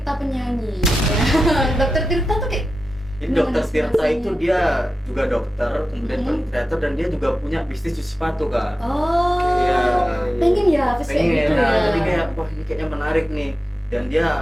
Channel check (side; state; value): both; normal; correlation 0.92